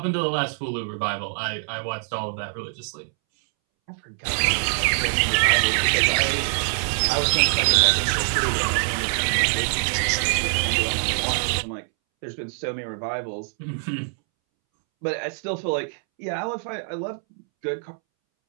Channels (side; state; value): left; silent; 63 dB below the other